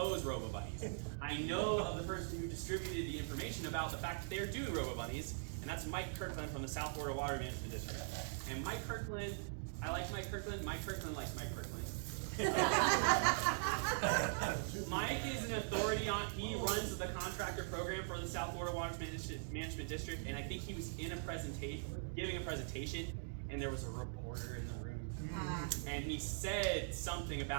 Robo Bunnies. I know of the person who distributed the information about the fact that they're doing Robo Bunnies, and that's Mike Kirkland from the South Florida Water Management District. And Mike Kirkland, I like Mike Kirkland. Mike Kirkland likes Mike Kirkland. Mike is an authority on, he runs the contractor program for the South Florida Water Management District, and I think he was in a presentation, giving a presentation, and there was a reporter in the room. And he said something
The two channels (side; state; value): left; silent; digital silence